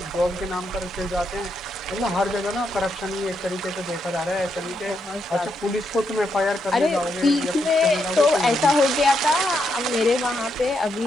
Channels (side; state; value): both; normal; correlation 0.80